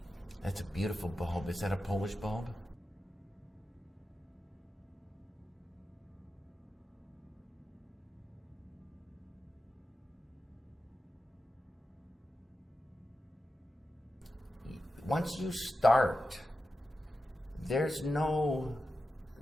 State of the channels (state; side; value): normal; both; correlation 0.91